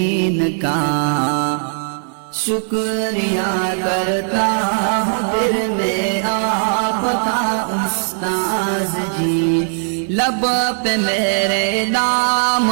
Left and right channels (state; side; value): silent; left; 56 dB below the other